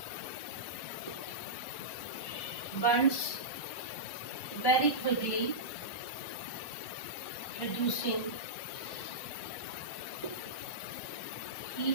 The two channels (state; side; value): late; right; 1.1 ms